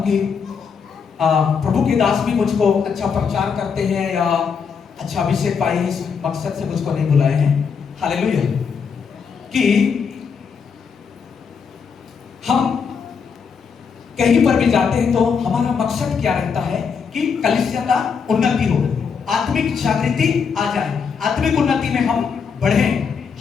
कि प्रभु के दास भी मुझको अच्छा प्रचार करते हैं या अच्छा अभिषेक पाए हैं, इस मकसद से मुझको नहीं बुलाए हैं। हालेलुया। कि हम कहीं पर भी जाते हैं तो हमारा मकसद क्या रहता है कि कलीसिया का उन्नति हो, आत्मिक जागृति आ जाए, आत्मिक उन्नति में हम बढ़े,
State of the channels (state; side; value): quieter; right; 6.1 dB